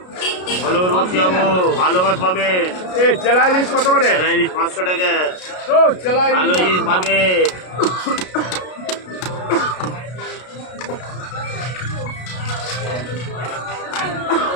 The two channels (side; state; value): right; late; 33 ms